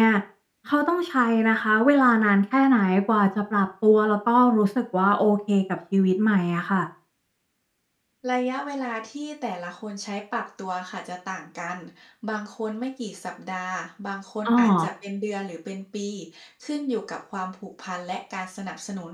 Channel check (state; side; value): identical; both; correlation 1.00